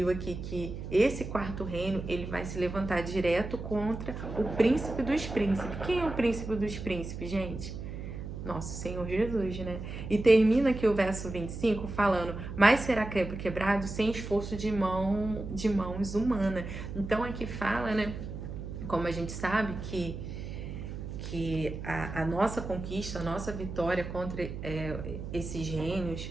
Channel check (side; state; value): right; noise; hum, 8 dB below the sound